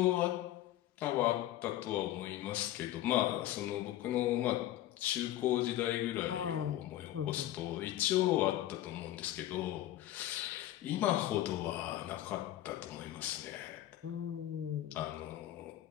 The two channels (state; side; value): quieter; right; 13.8 dB